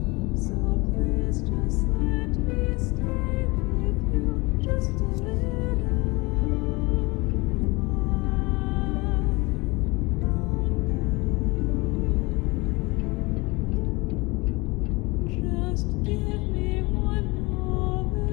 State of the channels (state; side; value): quieter; right; 24.6 dB